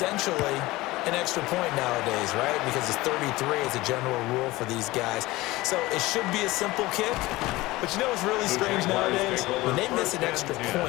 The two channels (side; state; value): right; quieter; 19.5 dB